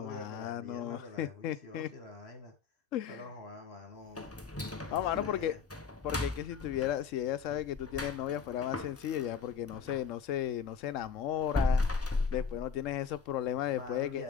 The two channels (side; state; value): right; quieter; 6.7 dB